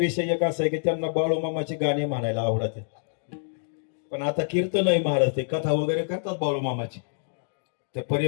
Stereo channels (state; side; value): silent; right; digital silence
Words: एक असा आहे की त्यांना बाळूमामाची गाणी म्हणायला आवडत आहेत, पण आता कीर्तन आहे महाराज, ते कथा वगैरे करतात बाळूमामाची. ते